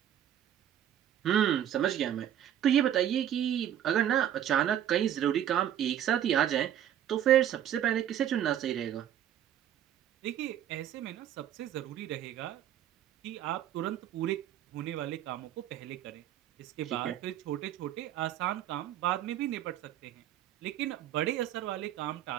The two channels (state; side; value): quieter; left; 10.7 dB